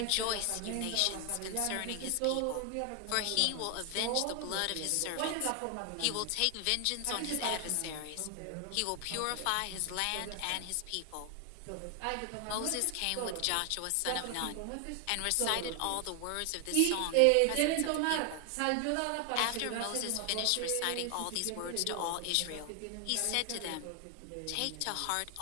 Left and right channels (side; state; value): both; different; correlation 0.00